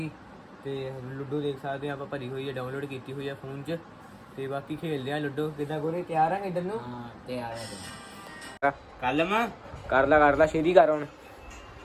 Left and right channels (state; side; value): identical; both; correlation 1.00